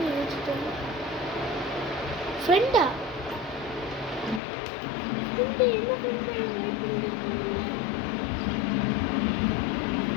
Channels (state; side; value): drops out; right; at 4.4 s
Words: ஃப்ரெண்டா, ஃப்ரெண்டு என்ன ஃப்ரெண்டா வெயிட் பண்ணிட்டு இருக்கோம்ல.